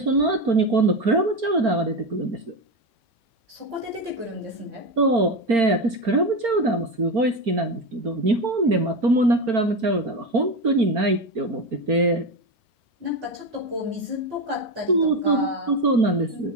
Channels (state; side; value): late; left; 4.4 ms